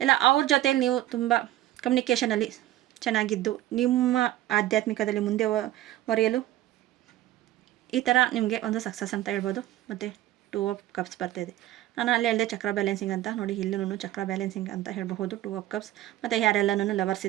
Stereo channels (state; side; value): quieter; left; 14.4 dB